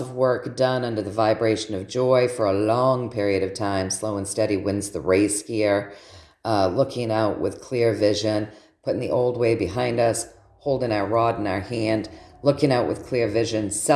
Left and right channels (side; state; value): both; identical; correlation 1.00